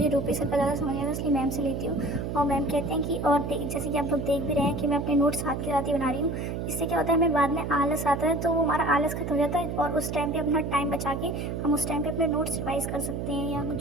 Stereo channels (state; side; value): noise; right; hum, 3 dB below the sound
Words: रूपेश सर का ज़्यादा समझ आता है, इसलिए मैम से लेती हूँ। और मैम कहते हैं कि और जैसे कि आप लोग देख भी रहे हैं कि मैं अपने नोट्स साथ के साथ ही बना रही हूँ। इससे क्या होता है, हमें बाद में आलस आता है तो वो हमारा आलस खत्म हो जाता है और उस टाइम पे अपना टाइम बचा के हम उस टाइम पे अपने नोट्स रिवाइज कर सकते हैं, या